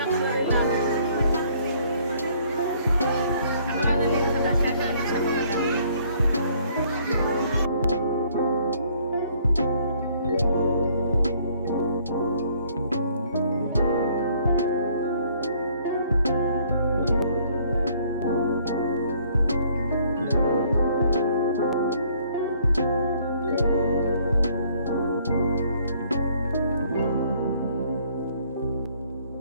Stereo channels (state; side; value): inverted; both; correlation -0.62